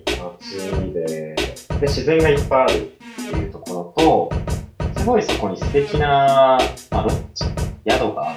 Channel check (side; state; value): both; identical; correlation 1.00